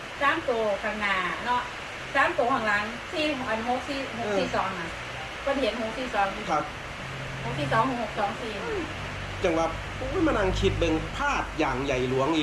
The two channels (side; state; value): both; identical; correlation 1.00